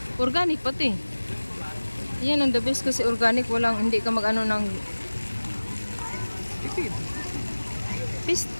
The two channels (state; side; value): inverted; both; correlation -1.00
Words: Organic pati. Yan ang the best kasi organic. Hindi ka mag-ano ng Tipid.